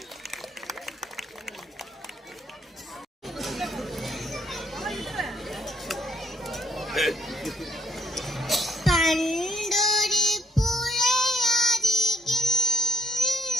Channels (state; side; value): normal; both; correlation 0.70